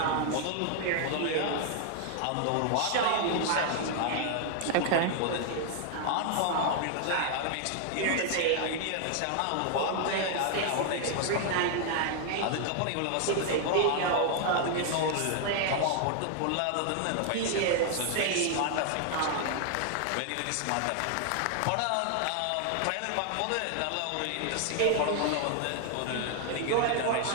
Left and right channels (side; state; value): both; different; correlation 0.00